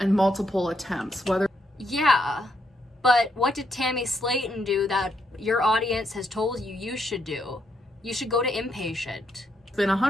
attempts. Yeah, but what did Tammy Slayton do that your audience has told you should do? You should go to Impatient. It's been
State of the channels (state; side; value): normal; both; correlation 0.77